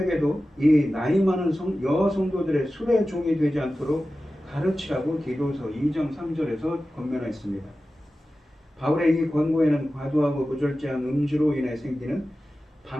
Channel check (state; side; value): normal; both; correlation 0.94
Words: 이 나이 많은 여성도들의 술의 종이 되지 않도록 가르치라고 디도서 2장 3절에서 권면했습니다. 바울의 이 권고에는 과도하고 무절제한 음주로 인해 생기는